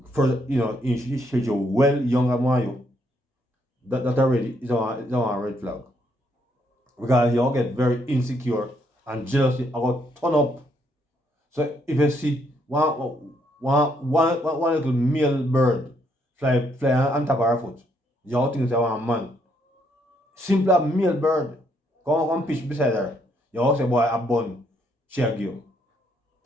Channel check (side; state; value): both; normal; correlation 0.72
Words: well younger than you. That already is on a red flag. Because you all get very insecure and jealousy about turn up. So if you see one little male bird fly on top of her foot, you all think they want a man. Simple male bird come pitch beside her. You all say, boy, a bun, shag you.